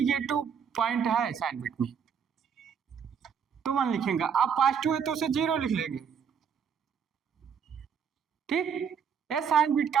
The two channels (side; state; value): left; quieter; 7.2 dB